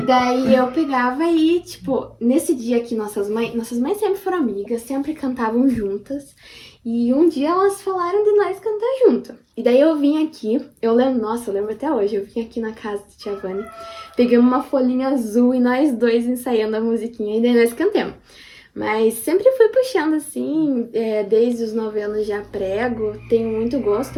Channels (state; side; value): identical; both; correlation 1.00